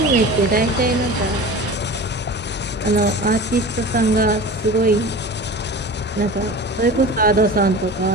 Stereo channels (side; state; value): both; normal; correlation 0.35